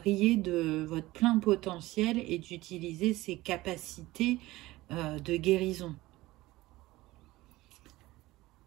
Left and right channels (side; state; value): left; quieter; 18.4 dB